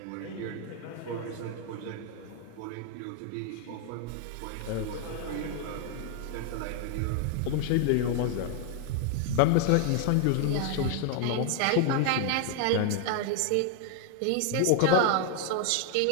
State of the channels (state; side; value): different; both; correlation 0.00